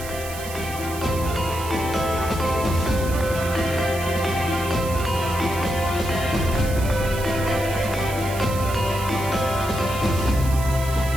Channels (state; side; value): noise; right; hiss, 12 dB below the sound